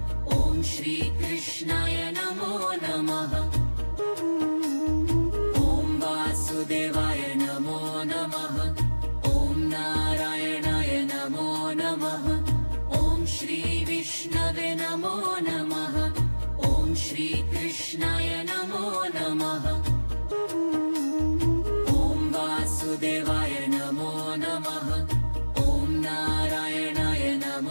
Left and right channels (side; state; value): both; inverted; correlation -1.00